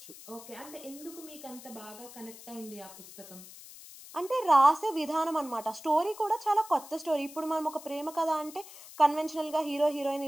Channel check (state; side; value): noise; left; hiss, 17 dB below the sound